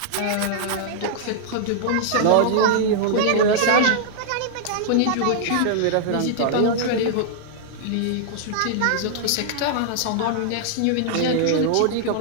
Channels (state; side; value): different; both; correlation -0.01